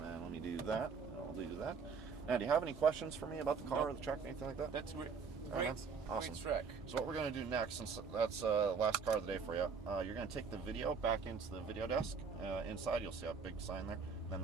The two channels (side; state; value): left; quieter; 5.6 dB